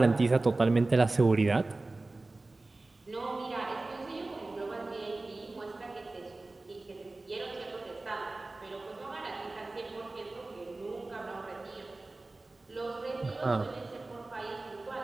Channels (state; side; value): quieter; left; 3.1 dB